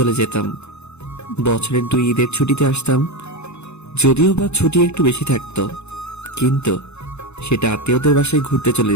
যেতাম। বছরের 2 ঈদের ছুটিতে আসতাম, যদিও বা ছুটি একটু বেশি থাকতো, কিন্তু সেটা আত্মীয়দের বাসায় ঘুরতে চলে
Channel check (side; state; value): right; late; 0.81 ms